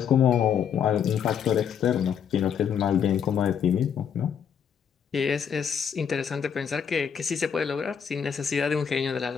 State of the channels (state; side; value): quieter; right; 7.7 dB